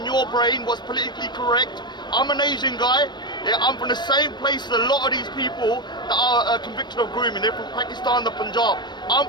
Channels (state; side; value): late; right; 0.22 ms